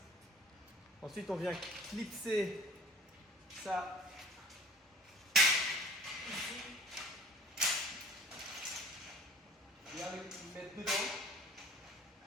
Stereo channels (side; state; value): both; normal; correlation 0.48